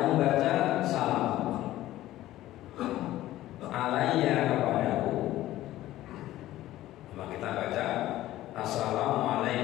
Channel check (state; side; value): quieter; right; 14.9 dB